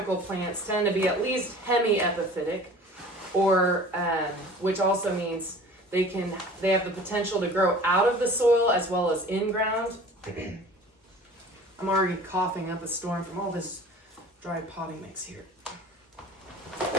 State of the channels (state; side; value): normal; both; correlation 0.44